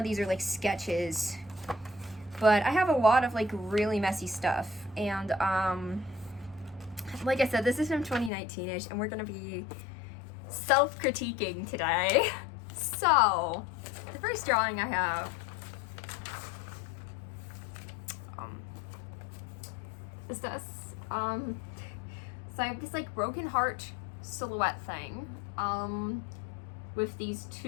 these are like sketches, but I have a lot of like really messy stuff. And like I said, this is from 2019-ish, and we're gonna be self-critiquing today. So the first drawing I have is this. So I have this like broken heart silhouette thing, with these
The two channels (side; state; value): right; drops out; at 8.3 s